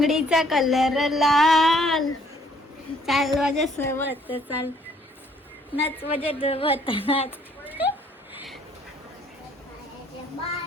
कलर लाल. चाल माझ्या सोबत चाल नाच माझ्या सोबत नाच.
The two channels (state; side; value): normal; both; correlation 0.63